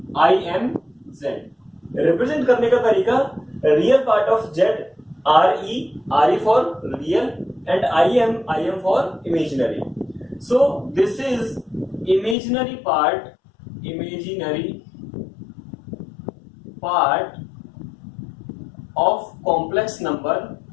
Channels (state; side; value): drops out; right; at 12.4 s